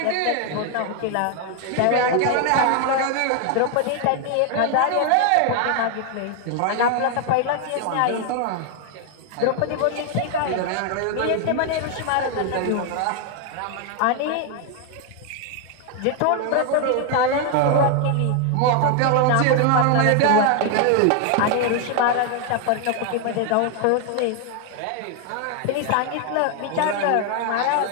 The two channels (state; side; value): different; both; correlation 0.01